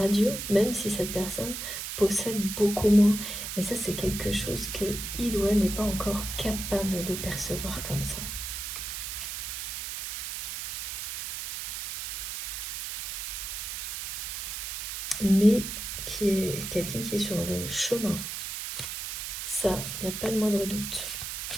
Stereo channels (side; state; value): right; noise; hiss, 5 dB below the sound